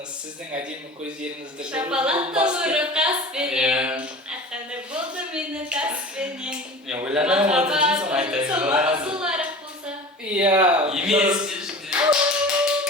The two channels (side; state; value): both; normal; correlation 0.37